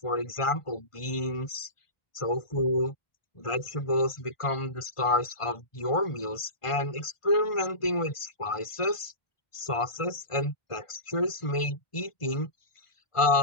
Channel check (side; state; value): right; late; 1.5 ms